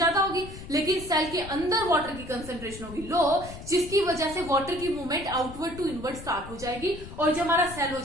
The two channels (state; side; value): noise; left; rumble, 13 dB below the sound